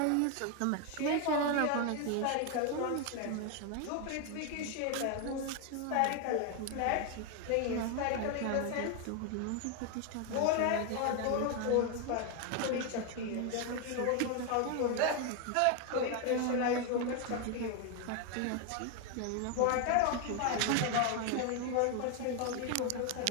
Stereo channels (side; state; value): both; different; correlation 0.01